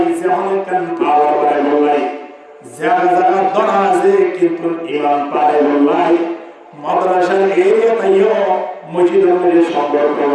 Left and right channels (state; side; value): identical; both; correlation 1.00